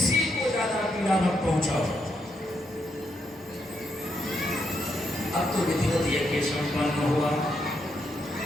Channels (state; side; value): normal; both; correlation 0.79